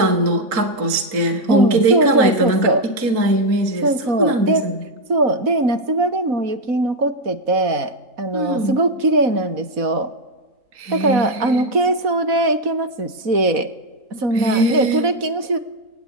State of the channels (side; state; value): left; late; 4.1 ms